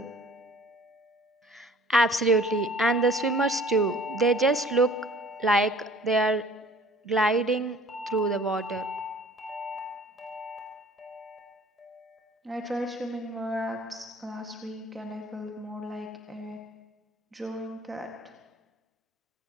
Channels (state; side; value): normal; both; correlation 0.51